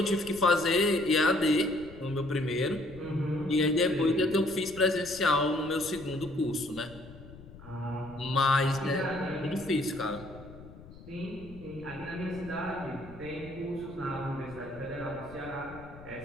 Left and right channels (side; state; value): left; noise; rumble, 18 dB below the sound